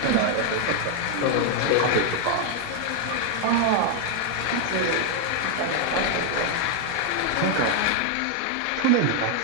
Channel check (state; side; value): different; both; correlation 0.00